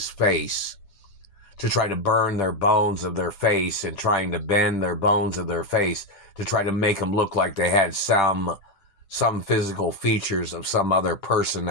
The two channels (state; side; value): late; right; 10 ms